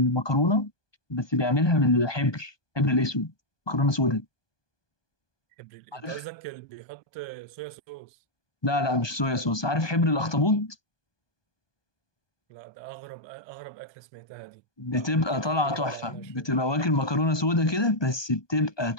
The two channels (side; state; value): right; late; 1.2 ms